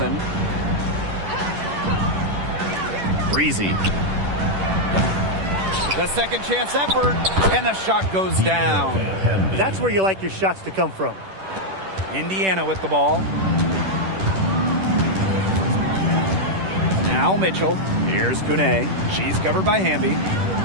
Breezy. The second chance effort, and the shot goes down. That's where you like your shots to come from. Indiana with the ball. Now Mitchell. Here's Kune. She's covered by Hamby.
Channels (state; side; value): late; left; 10 ms